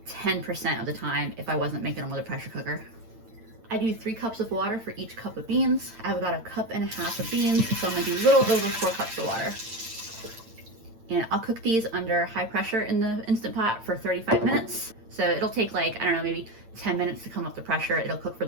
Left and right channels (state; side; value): late; left; 8.9 ms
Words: 10% of the time if I wasn't making them with a pressure cooker. I do 3 cups of water for each cup of beans. I have about 1.5 cups of beans, so I'm gonna do a little over 4 cups of water. And I'll cook these under high pressure in the Instant Pot for 35 minutes. So it'll take like, I don't know, maybe 10 minutes to come up the pressure. It'll cook for